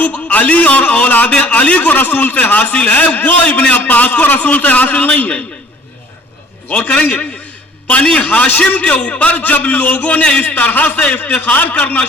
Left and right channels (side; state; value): both; normal; correlation 0.53